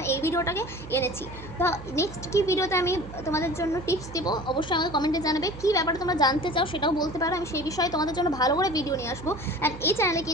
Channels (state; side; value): noise; right; hum, 14 dB below the sound